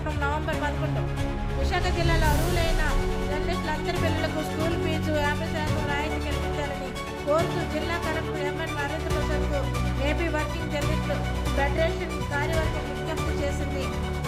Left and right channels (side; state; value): both; identical; correlation 1.00